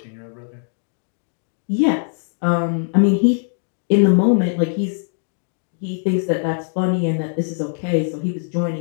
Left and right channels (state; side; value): silent; right; digital silence